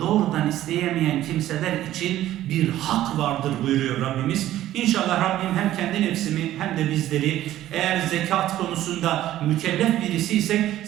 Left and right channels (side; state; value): left; quieter; 13.6 dB